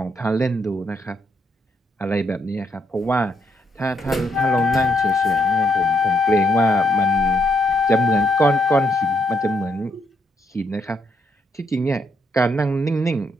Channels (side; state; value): both; normal; correlation 0.75